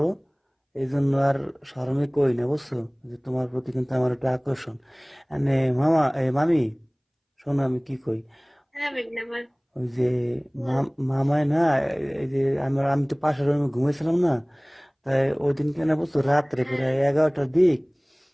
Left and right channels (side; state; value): both; identical; correlation 1.00